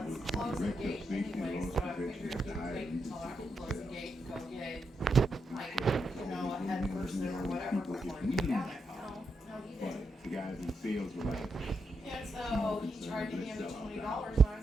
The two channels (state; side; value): normal; both; correlation 0.83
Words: it's close the gate anyway, so I figured you could wait until I could close the gate and go get, like, you know, a head person or whatever before you get down there. No, he didn't. The guys in sales were like, And so he tried to hand me $20, and I